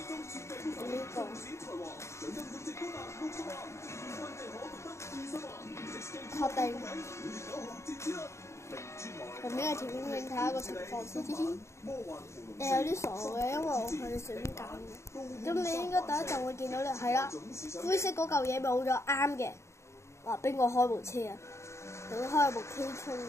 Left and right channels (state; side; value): late; right; 0.14 ms